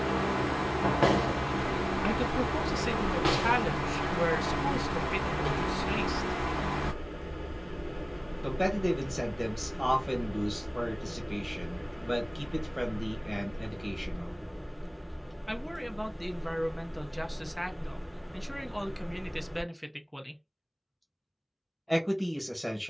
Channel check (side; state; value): both; identical; correlation 1.00